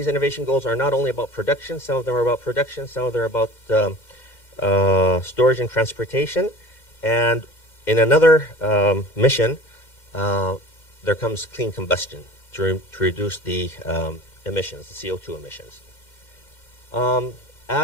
innovation goals are not only about production, some of them are about production, some of them are about storage and transportation. And in another mission, there comes clean combustion to reduce the emissions, the CO2 emissions.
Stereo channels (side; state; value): right; late; 2.1 ms